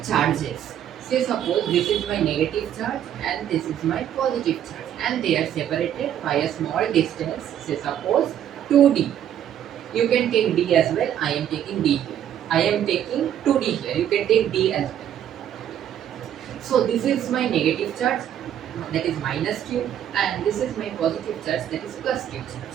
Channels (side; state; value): left; quieter; 10.3 dB